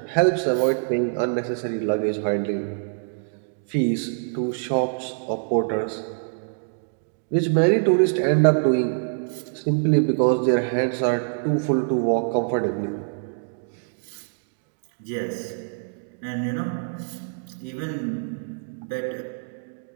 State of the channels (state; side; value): silent; left; digital silence